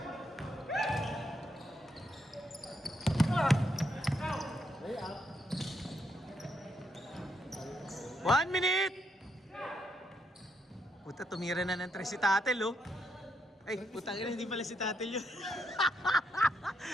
One minute! Puta, tumira na ng 3 si Tatel, oh. Ay, putang ina, hindi pala si Tatel yun.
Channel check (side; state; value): both; normal; correlation 0.78